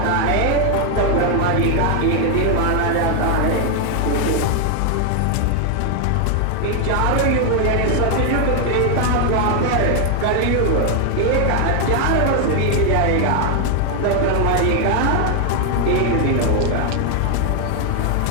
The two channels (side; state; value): both; different; correlation 0.00